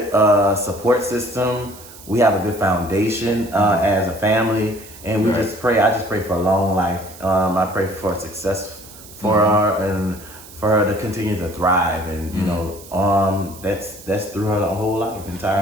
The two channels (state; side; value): noise; right; hiss, 19 dB below the sound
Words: support system. We have a good foundation as a family, and we just pray. I just pray for a long life. I pray for success for her and for her to continue to thrive, and that's through her whole life,